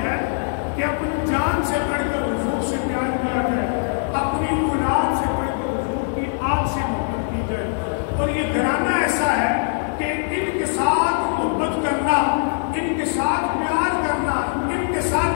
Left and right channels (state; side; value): silent; right; 63 dB below the other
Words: ہے کہ اپنی جان سے بڑھ کر حضور سے پیار کیا جائے اپنی اولاد سے بڑھ کر حضور کی آل سے محبت کی جائے اور یہ گھرانہ ایسا ہے کہ ان کے ساتھ محبت کرنا ان کے ساتھ پیار کرنا ان کے